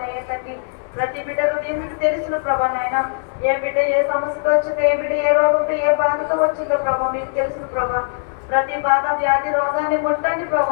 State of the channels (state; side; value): silent; right; digital silence